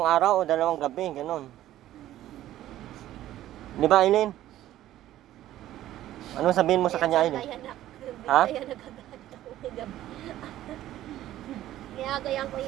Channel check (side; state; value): left; quieter; 13.6 dB